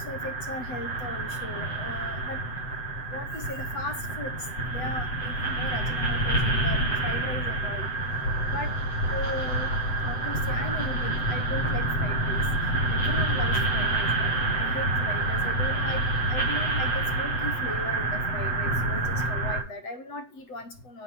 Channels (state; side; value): late; right; 8.0 ms